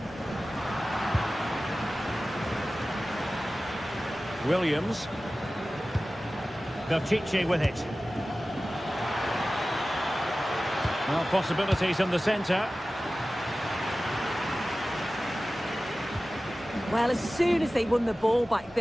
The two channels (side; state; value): both; normal; correlation 0.96